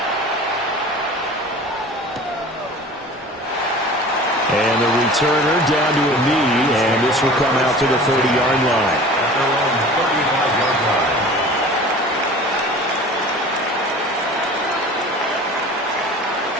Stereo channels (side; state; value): both; normal; correlation 0.41